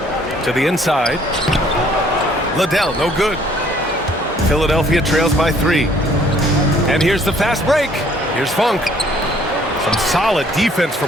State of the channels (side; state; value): both; normal; correlation 0.60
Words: To the inside. Liddell, no good. Philadelphia trails by 3. And here's the fast break. Here's Funk. Some solid defense